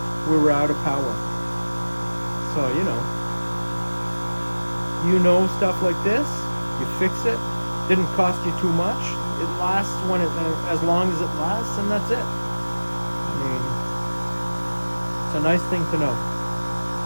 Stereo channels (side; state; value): both; inverted; correlation -1.00